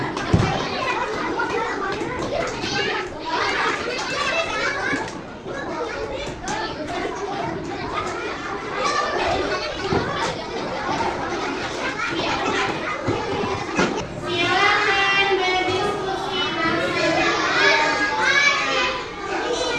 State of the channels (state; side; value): identical; both; correlation 1.00